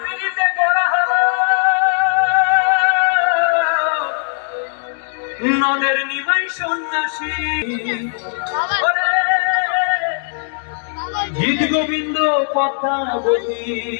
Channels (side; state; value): right; silent; digital silence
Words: নদের নিমাই সন্ন্যাসী গীত গোবিন্দ কথা বলি